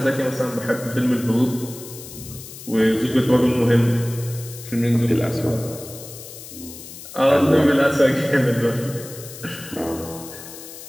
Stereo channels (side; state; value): left; noise; hiss, 14 dB below the sound